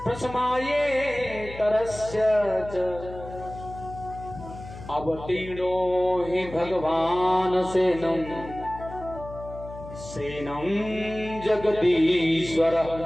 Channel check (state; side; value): noise; left; hum, 14 dB below the sound